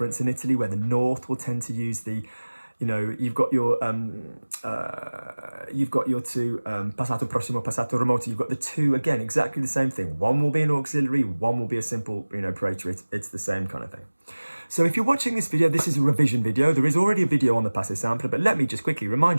in Italy where the north will tend to use the, you know, you've got your two passato prossimo, passato remoto. You've got the two again, exactly the same thing. One will be an auxiliary, one will be a simple, you know, praetor. It's the same kind of thing. So if you're watching this video, this is a revision video. There is already a video on the passé simple, but let me just quickly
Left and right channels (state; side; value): inverted; both; correlation -1.00